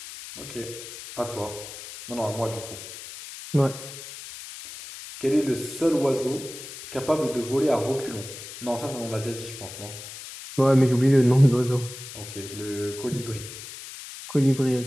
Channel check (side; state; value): left; noise; hiss, 12 dB below the sound